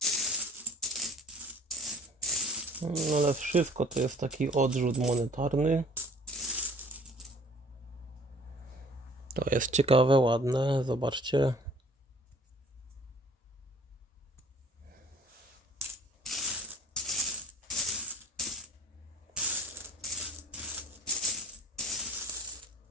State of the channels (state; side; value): normal; both; correlation 0.54